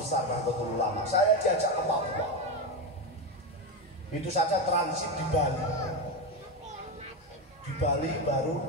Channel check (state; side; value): normal; both; correlation 0.13